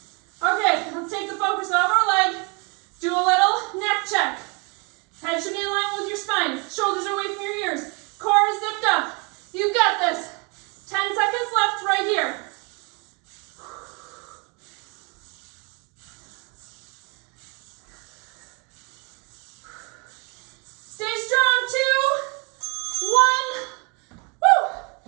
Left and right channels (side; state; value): left; quieter; 32.3 dB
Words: Okay, let's take the focus off our leg. Do a little neck check. Head should be in line with your spine. Shoulders are away from your ears. Core is zipped up. You've got this. 10 seconds left right here. Stay strong. 2, 1.